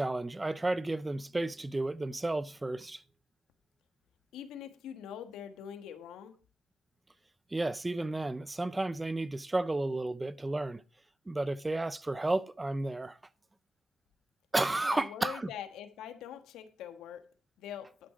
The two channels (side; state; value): both; normal; correlation 0.96